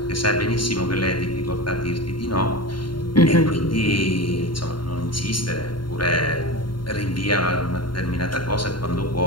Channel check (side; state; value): right; late; 0.72 ms